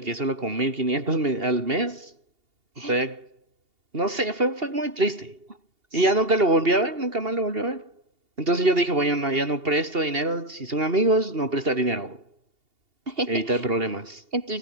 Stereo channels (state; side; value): late; left; 2.8 ms